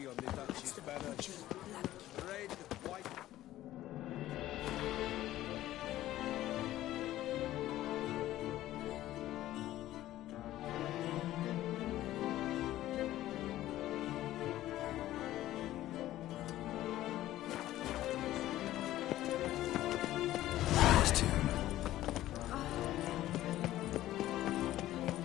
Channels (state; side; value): quieter; right; 14.5 dB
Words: on the Duchy's banner? Red, white...